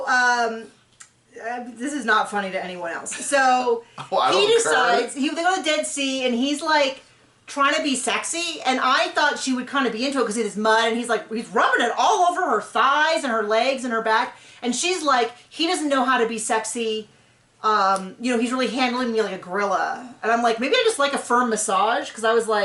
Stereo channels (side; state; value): both; identical; correlation 1.00